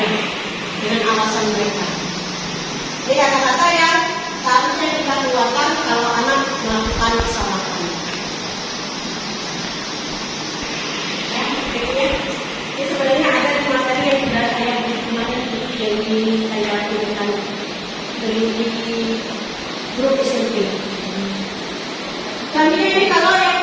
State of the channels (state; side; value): identical; both; correlation 1.00